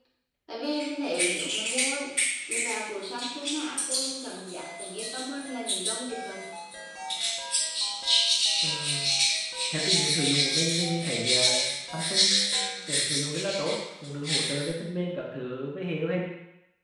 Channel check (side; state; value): both; identical; correlation 1.00